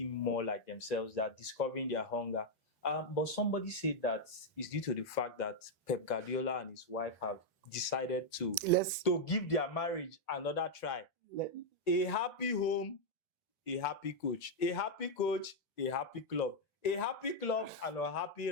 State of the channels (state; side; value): normal; both; correlation -0.02